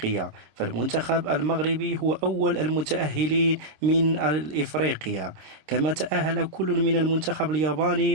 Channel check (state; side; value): late; left; 26 ms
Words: فالمنتخب المغربي هو أول المتأهلين من إفريقيا، كما تأهل كل من المنتخب